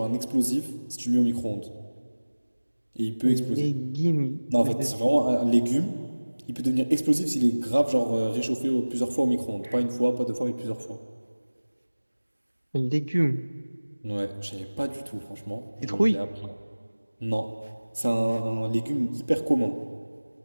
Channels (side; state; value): both; inverted; correlation -1.00